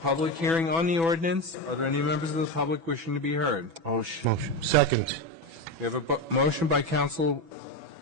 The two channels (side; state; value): left; late; 6.1 ms